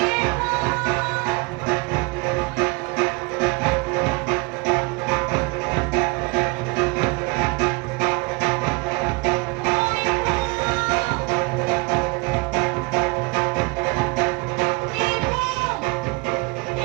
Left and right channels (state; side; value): quieter; left; 27.2 dB